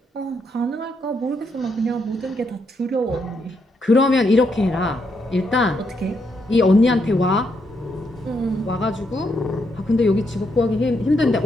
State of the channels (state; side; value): normal; both; correlation 0.78